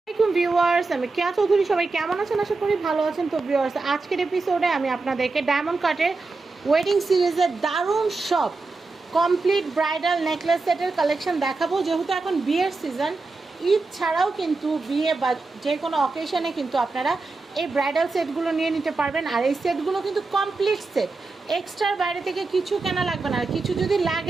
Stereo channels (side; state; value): left; quieter; 3.7 dB